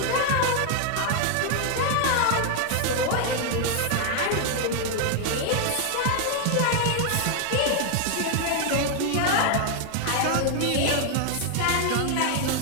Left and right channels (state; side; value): different; both; correlation 0.00